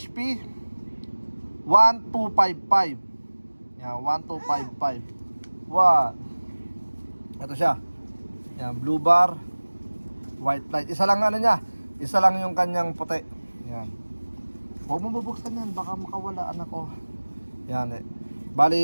1255. Yan, 1255. What? Ito siya. Yan, blue bar, white light. Isa lang niya. Isa lang yung kanyang puti. Yan. Huwag mo bubuksan yan, baka makawala anak ko. Yan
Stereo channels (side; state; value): both; inverted; correlation -1.00